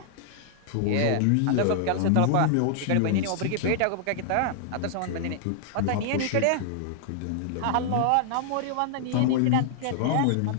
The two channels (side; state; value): both; different; correlation -0.01